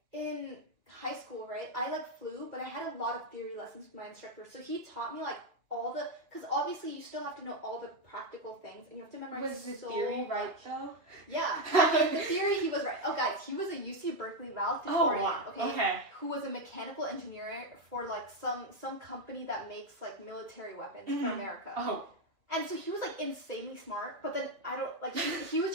in high school, right, I like flew, but I had a lot of theory lessons with my instructor, so he taught me like because obviously you still have to know all the practical things, and you have to memorize. Was the theory right though? Yeah, the theory, he was right. Oh guys, he was a UC Berkeley valedictorian, okay, who was a mechanical engineer for like some company that makes like military weapons for America. Oh. And so he was like insanely smart, but then I don't like, he was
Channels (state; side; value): late; left; 2.5 ms